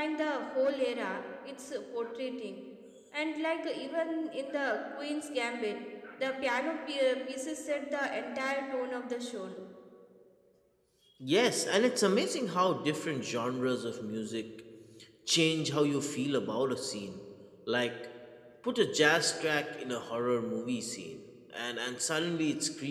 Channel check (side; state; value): both; identical; correlation 1.00